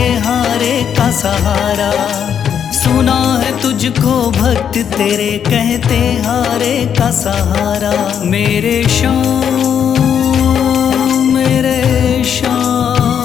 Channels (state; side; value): quieter; right; 8.3 dB